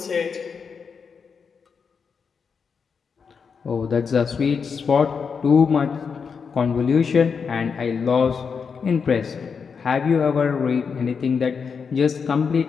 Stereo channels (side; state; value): right; quieter; 5.9 dB